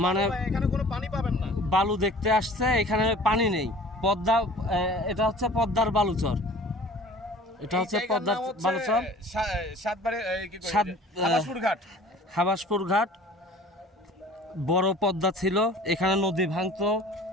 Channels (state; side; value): normal; both; correlation 0.46